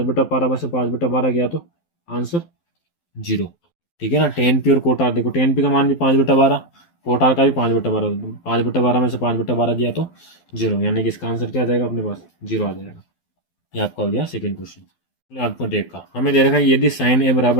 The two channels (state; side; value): late; right; 12 ms